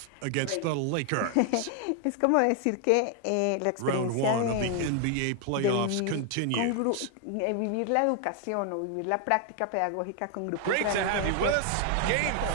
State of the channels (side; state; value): both; different; correlation 0.00